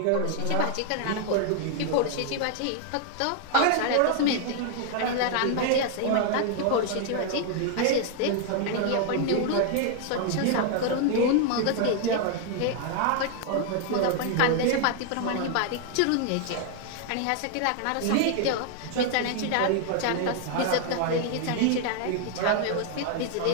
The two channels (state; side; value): different; both; correlation 0.00